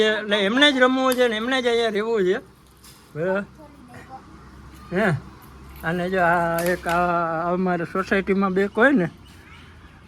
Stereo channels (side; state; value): both; identical; correlation 1.00